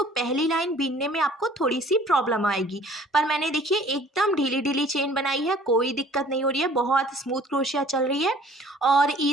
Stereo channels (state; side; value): normal; both; correlation 0.53